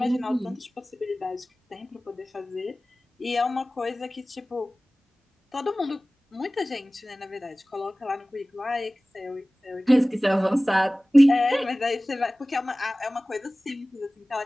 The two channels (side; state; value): both; normal; correlation 0.98